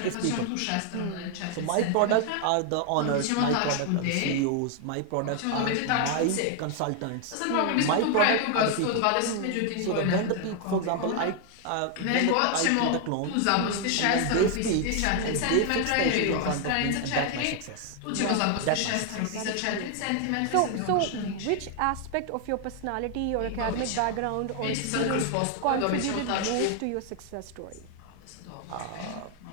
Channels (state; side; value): different; both; correlation 0.00